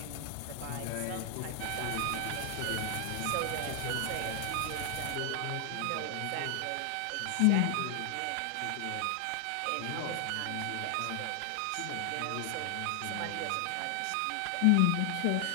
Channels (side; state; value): both; different; correlation 0.00